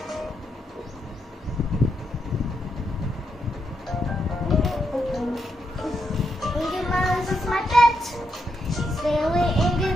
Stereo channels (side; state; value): both; normal; correlation 0.81